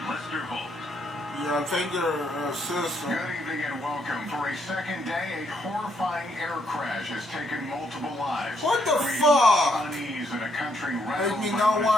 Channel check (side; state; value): both; normal; correlation 0.73